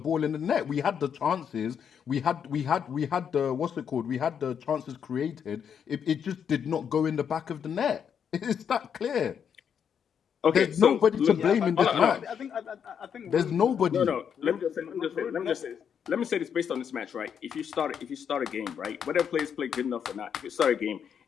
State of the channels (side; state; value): right; quieter; 7.7 dB